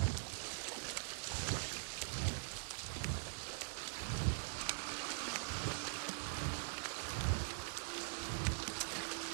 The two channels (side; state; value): left; silent; digital silence